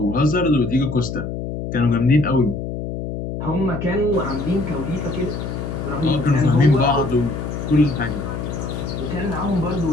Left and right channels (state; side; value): noise; left; hum, 5 dB below the sound